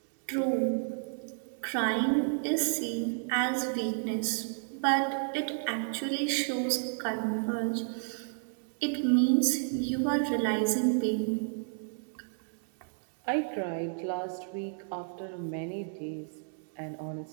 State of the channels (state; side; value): silent; left; digital silence